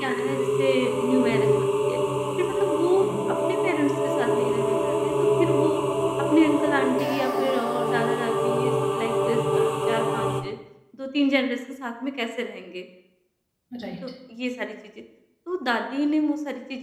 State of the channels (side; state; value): both; identical; correlation 1.00